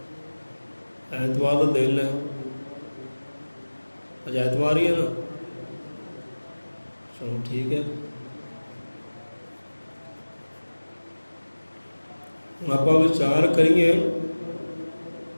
ਐਤਵਾਰ ਦਾ ਦਿਨ ਹੈ। ਅੱਜ ਐਤਵਾਰ ਹੀ ਹੈ ਨਾ? ਚਲੋ ਠੀਕ ਹੈ। ਆਪਾਂ ਵਿਚਾਰ ਕਰੀਏ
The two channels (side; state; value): both; inverted; correlation -1.00